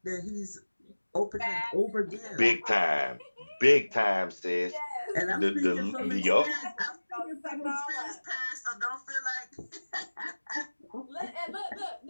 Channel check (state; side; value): inverted; both; correlation -1.00